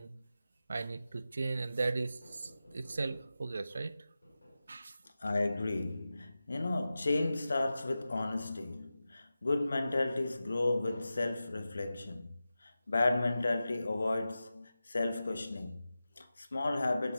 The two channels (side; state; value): both; inverted; correlation -0.93